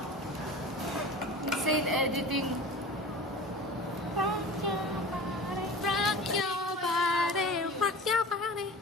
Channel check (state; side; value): normal; both; correlation 0.36